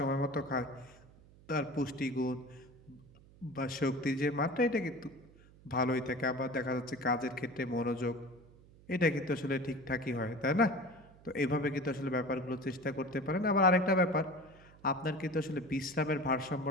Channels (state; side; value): noise; right; hum, 24 dB below the sound